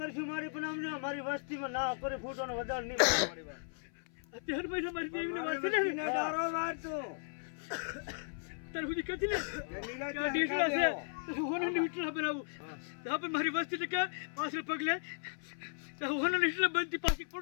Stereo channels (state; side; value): silent; right; 54 dB below the other